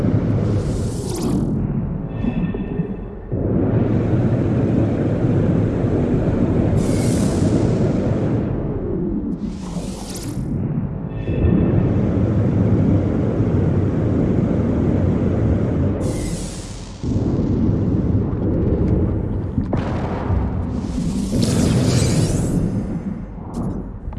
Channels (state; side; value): identical; both; correlation 1.00